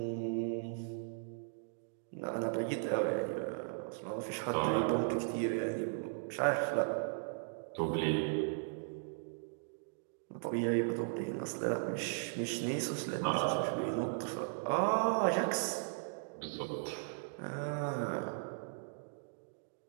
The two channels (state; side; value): silent; left; digital silence